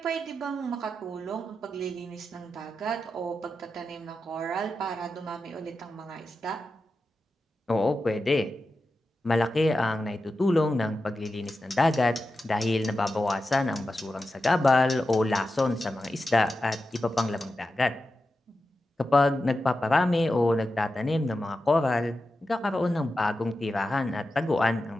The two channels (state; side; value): normal; both; correlation 0.91